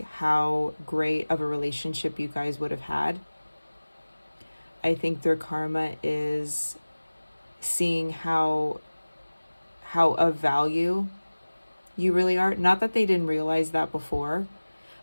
how great of a relationship you guys would have had. I think their karma is seeing how of value you really are. Not that they didn't realize that before,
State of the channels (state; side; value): inverted; both; correlation -1.00